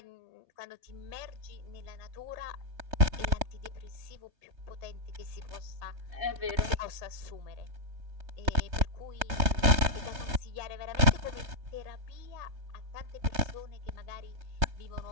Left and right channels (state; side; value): late; left; 3.2 ms